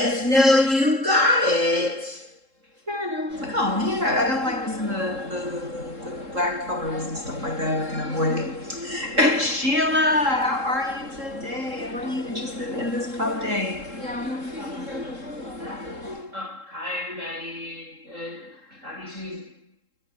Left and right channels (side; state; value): left; late; 3.7 ms